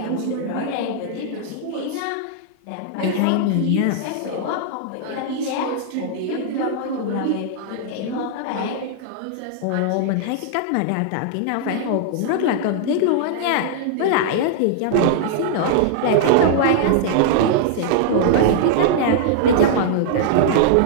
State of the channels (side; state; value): both; different; correlation -0.01